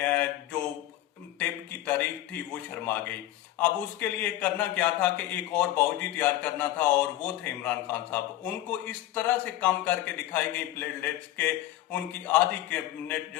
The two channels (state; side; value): quieter; right; 14.3 dB